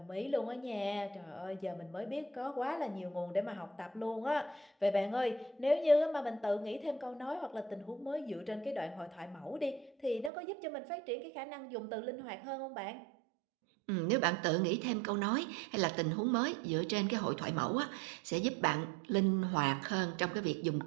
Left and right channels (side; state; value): left; drops out; at 10.3 s